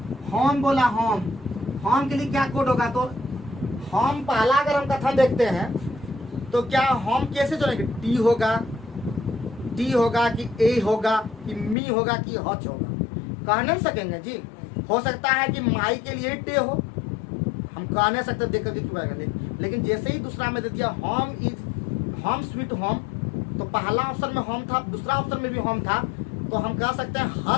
होम बोला, होम के लिए क्या कोड होगा? तो होम पहला अगर हम कथन देखते हैं तो क्या होम कैसे चलेंगे? टी होगा कि ए होगा कि मी होगा कि हच होगा? कह नहीं सकेंगे जी। हो सकता है कि माई के लिए टे हो, हम कह नहीं सकते देख करके क्यों आएगा। लेकिन जैसे ही दूसरा में दे दिया होम स्वीट होम, तो पहला ऑप्शन में होम था, दूसरा ऑप्शन में भी होम था, तो हम कह सकते हैं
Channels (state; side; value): drops out; right; at 11.8 s